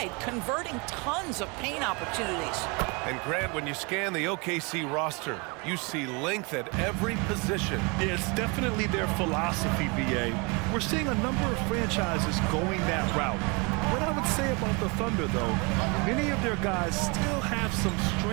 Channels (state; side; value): quieter; left; 30.1 dB